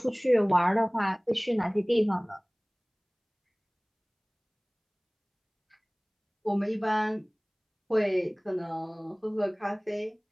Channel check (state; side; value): identical; both; correlation 1.00